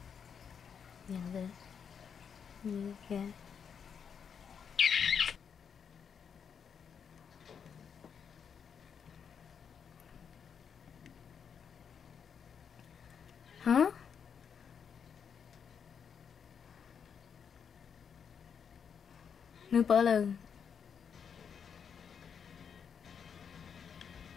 Nhận được. Như kìa. Hả? Nữ bỡ lần.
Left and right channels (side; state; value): right; quieter; 7.1 dB